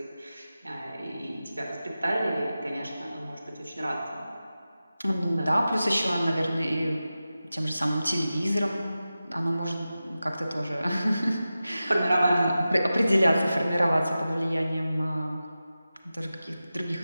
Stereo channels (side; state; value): both; inverted; correlation -0.94